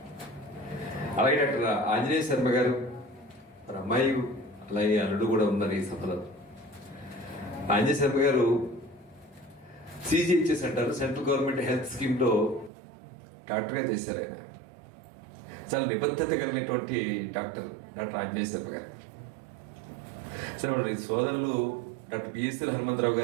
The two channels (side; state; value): left; drops out; at 12.7 s